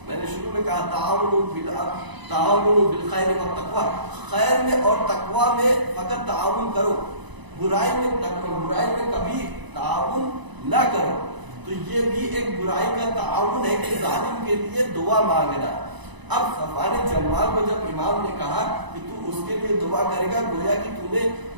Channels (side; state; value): left; late; 1.0 ms